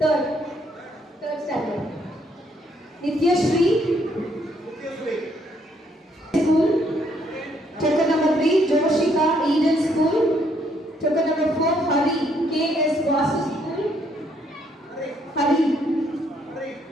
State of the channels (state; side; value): normal; both; correlation 0.70